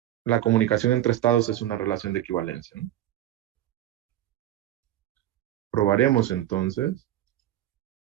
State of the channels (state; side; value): quieter; left; 13.0 dB